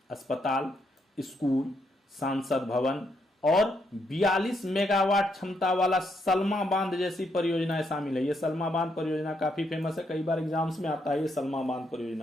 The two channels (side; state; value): both; normal; correlation 0.77